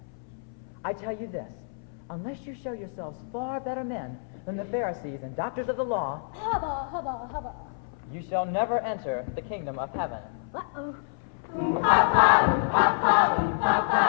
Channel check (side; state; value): right; silent; 59 dB below the other